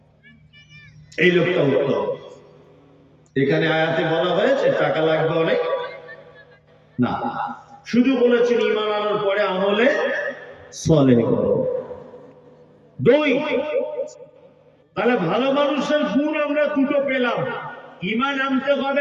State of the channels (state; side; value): identical; both; correlation 1.00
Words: এই লোকটা উত্তম। এখানে আয়াতে বলা হয়েছে টাকা লাগবে অনেক না, শুধু বলেছেন ঈমান আনার পরে আমলে সালেহ করো। দুই, তাহলে ভালো মানুষের গুণ আমরা দুটো পেলাম, ঈমান আনতে হবে